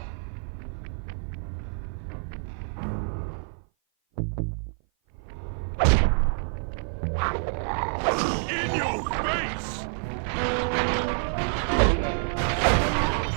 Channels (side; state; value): left; silent; 55 dB below the other